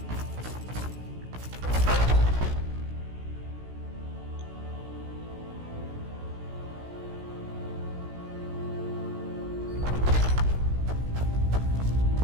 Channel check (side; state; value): left; late; 16 ms